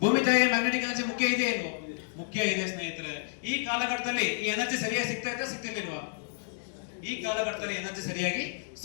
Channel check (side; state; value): right; silent; digital silence